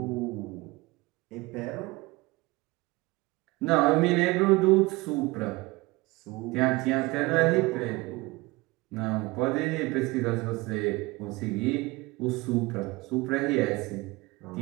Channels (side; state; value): left; quieter; 22.7 dB